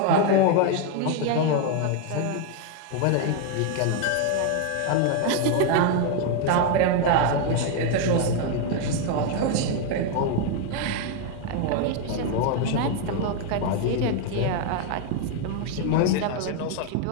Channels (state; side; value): different; both; correlation 0.01